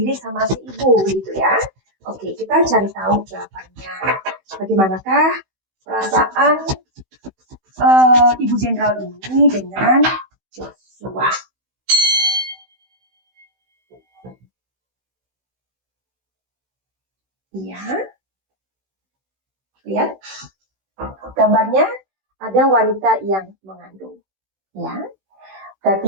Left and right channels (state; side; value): late; left; 16 ms